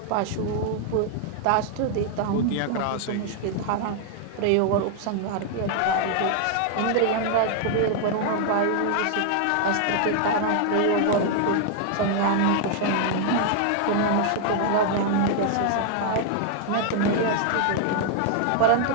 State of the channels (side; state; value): both; different; correlation 0.00